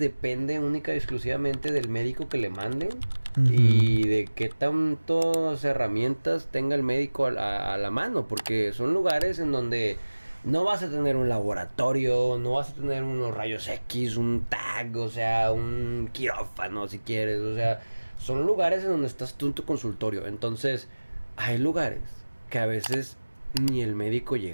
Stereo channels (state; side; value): inverted; both; correlation -1.00